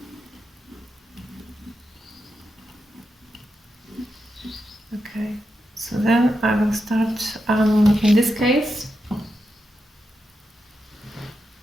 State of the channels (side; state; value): both; normal; correlation 0.87